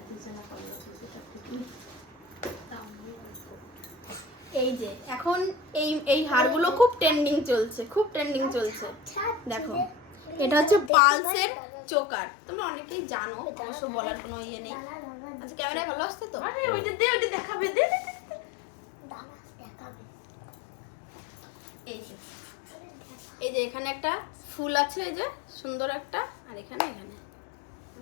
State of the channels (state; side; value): drops out; right; at 10.9 s